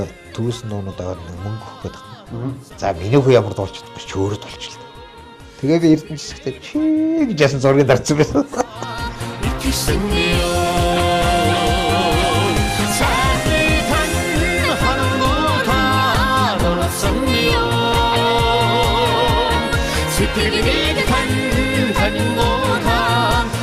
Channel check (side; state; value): both; identical; correlation 1.00